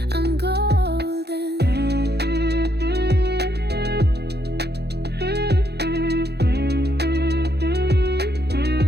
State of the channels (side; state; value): left; late; 0.48 ms